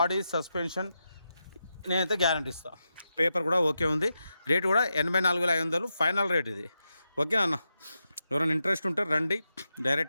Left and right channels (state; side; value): inverted; both; correlation -0.87